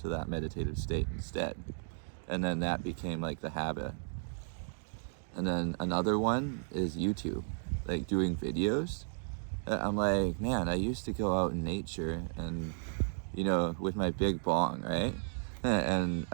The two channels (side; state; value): left; silent; digital silence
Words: that meditative state instead. And then that became like the habit. And then another one is YouTube, like doing videos. I'm like, man, I used to go out in nature and, with my big bong, right? And